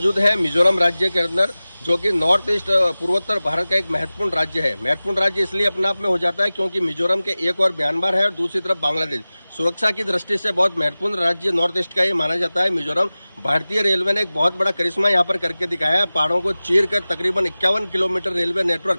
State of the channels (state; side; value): inverted; both; correlation -0.97